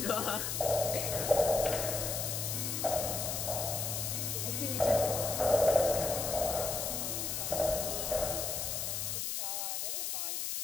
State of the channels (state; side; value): noise; left; hiss, 1 dB below the sound